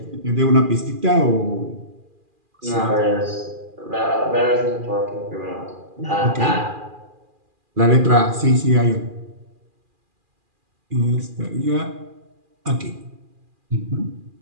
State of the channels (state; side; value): late; left; 2.4 ms